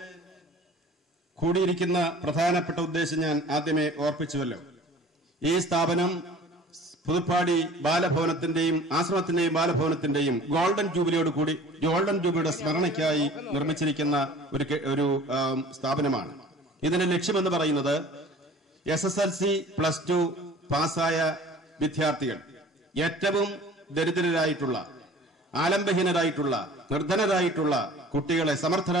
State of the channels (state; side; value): normal; both; correlation 0.46